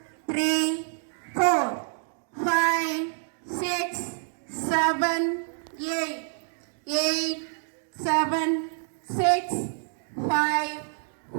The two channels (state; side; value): silent; left; digital silence